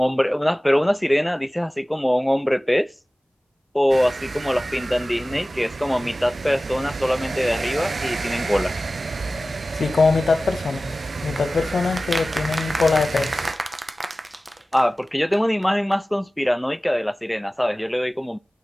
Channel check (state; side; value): normal; both; correlation 0.97